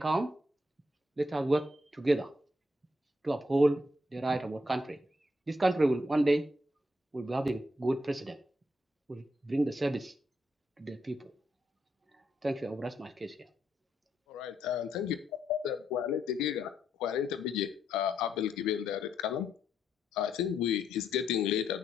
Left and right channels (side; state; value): both; normal; correlation 0.77